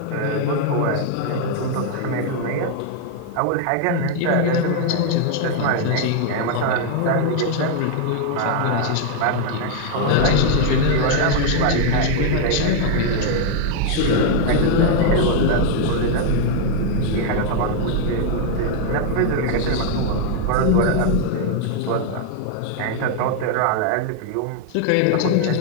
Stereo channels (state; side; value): different; both; correlation 0.00